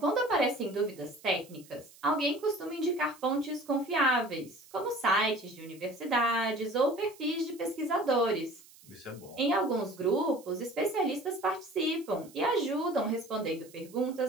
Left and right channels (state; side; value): noise; right; hiss, 23 dB below the sound